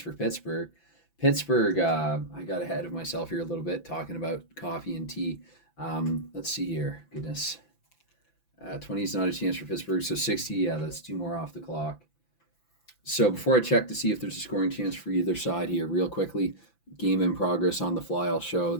for Pittsburgh. Pittsburgh, I got ahead of myself here a little bit talking about coffee and tea. Let's see here. Goodness. 20 is not a chance for Pittsburgh. So 60, yeah, that's two more off the clock. So before I check to see if there's a scoring chance for either side here, real quickly, game in progress on the fly, I'll show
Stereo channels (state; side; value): late; right; 5.9 ms